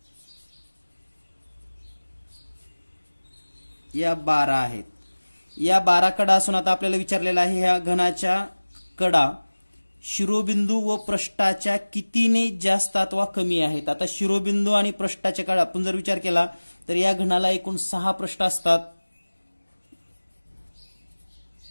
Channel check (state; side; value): inverted; both; correlation -1.00